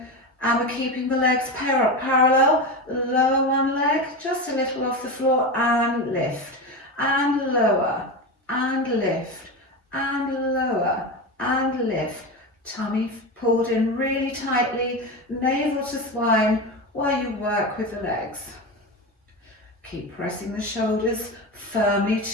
and we're keeping the legs parallel. Lower one leg, just a little off the floor, and lift, and lower, and lift, and lower, and lift. Tummy pulled in really tightly, navel to spine while you work with the legs. Keep pressing the shoulders firmly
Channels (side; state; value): both; normal; correlation 0.21